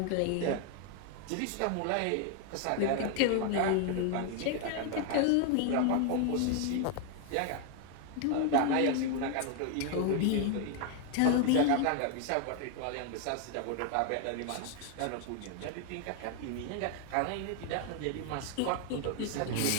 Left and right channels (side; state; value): both; different; correlation 0.00